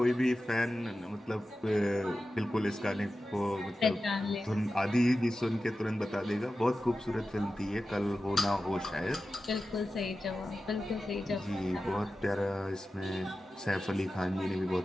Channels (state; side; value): normal; both; correlation 0.93